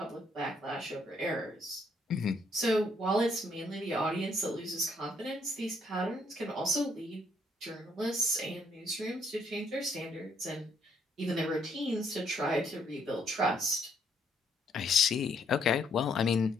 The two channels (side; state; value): both; normal; correlation 0.70